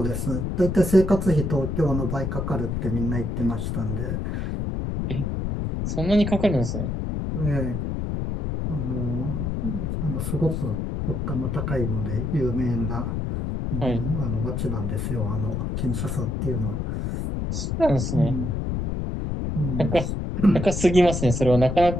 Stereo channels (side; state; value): left; noise; rumble, 2 dB below the sound